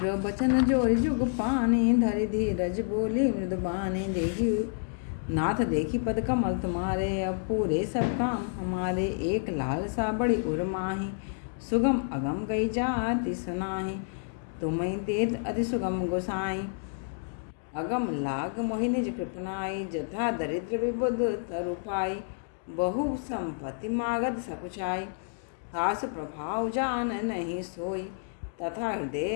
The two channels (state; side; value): silent; right; digital silence